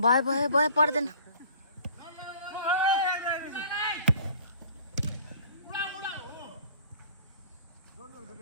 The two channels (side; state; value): both; inverted; correlation -0.50